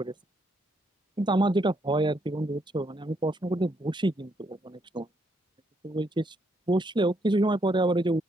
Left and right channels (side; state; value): both; normal; correlation 0.75